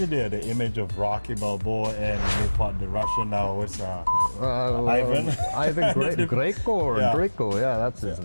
the image of Rocky Balboa and they fought the Russian now? It's Ivan. Ivan Greco or Yeah. Draco, yeah, that's his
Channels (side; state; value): both; inverted; correlation -1.00